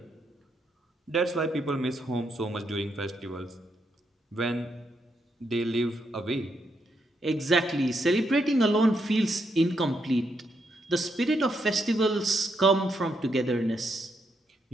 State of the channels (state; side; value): normal; both; correlation 0.79